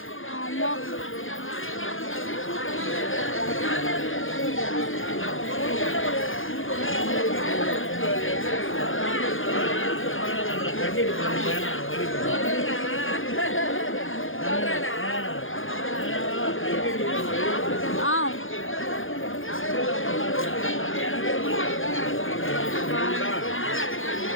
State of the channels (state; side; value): late; right; 0.59 ms